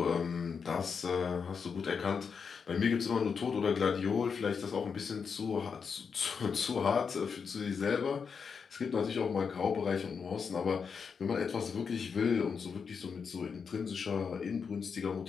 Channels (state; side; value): quieter; right; 6.0 dB